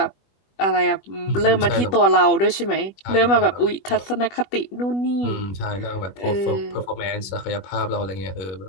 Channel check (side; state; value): right; late; 20 ms